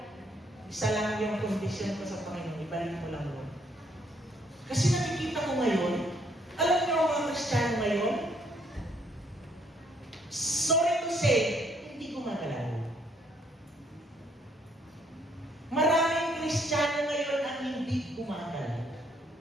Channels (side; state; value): both; normal; correlation 0.68